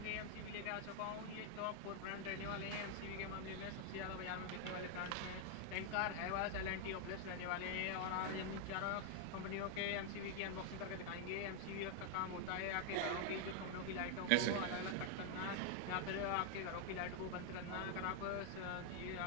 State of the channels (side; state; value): both; different; correlation 0.00